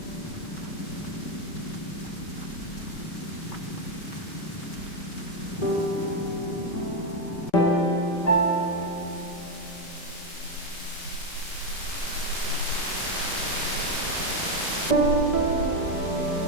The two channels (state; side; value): late; right; 5.2 ms